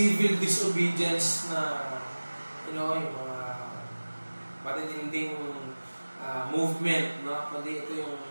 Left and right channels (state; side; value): inverted; both; correlation -1.00